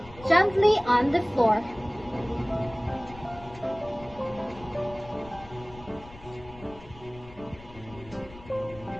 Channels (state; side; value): noise; left; rumble, 19 dB below the sound